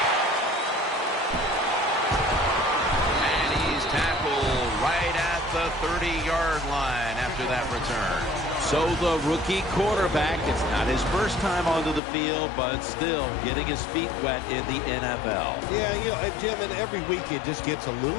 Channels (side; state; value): right; drops out; at 12.0 s